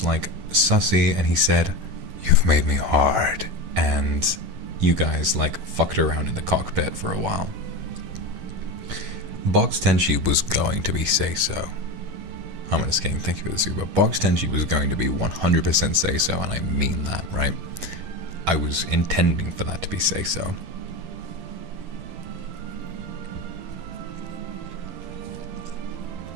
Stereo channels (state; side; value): late; left; 11 ms